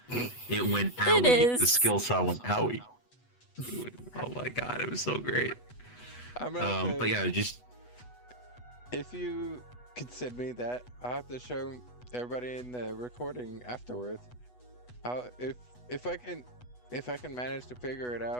It went It owie. The is. skill saw went owie. Oh my god, it was so great. I'm gonna have to, But yeah, just if you could send me that, I'll have to show everybody in the recording afterwards. I'll, if I can manage to figure it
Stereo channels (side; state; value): right; late; 8.1 ms